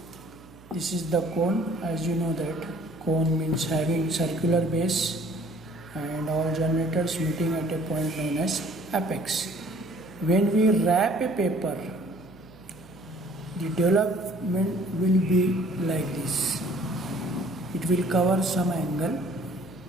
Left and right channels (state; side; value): noise; right; hum, 22 dB below the sound